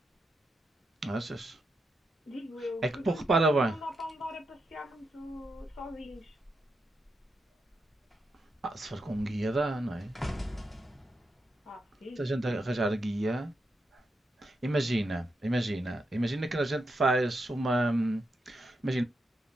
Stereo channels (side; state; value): both; normal; correlation 0.85